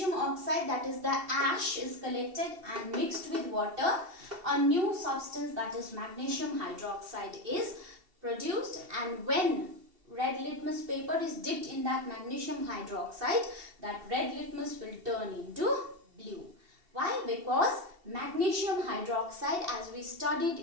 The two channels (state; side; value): late; left; 2.7 ms